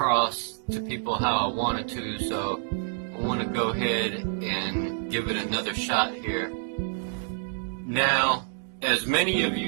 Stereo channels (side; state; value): left; silent; digital silence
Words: to people how I wanted to, so I want to go ahead and give it another shot here. Now, as many of